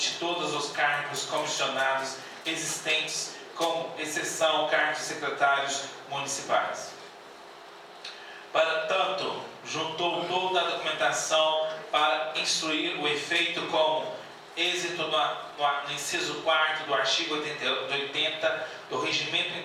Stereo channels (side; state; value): both; identical; correlation 1.00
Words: todos os cargos comissionados existentes, com exceção cargos de secretários municipais. Para tanto, juntou toda a documentação para instruir o efeito como êxito no inciso 4º do artigo 80 do Regimento